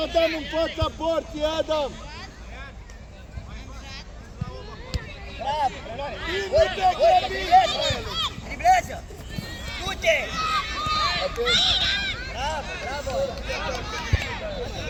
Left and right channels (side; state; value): both; identical; correlation 1.00